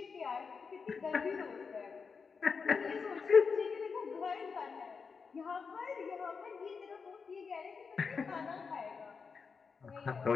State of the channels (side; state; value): right; quieter; 5.4 dB